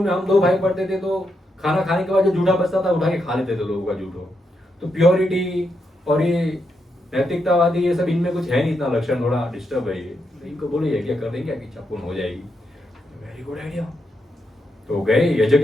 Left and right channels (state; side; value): normal; both; correlation 0.82